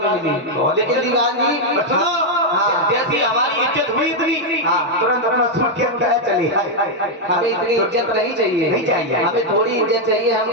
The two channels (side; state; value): both; normal; correlation 0.00